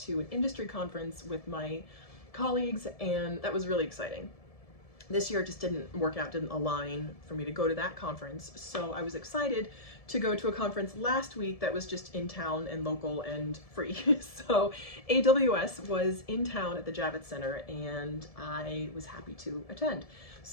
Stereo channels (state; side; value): late; right; 1.7 ms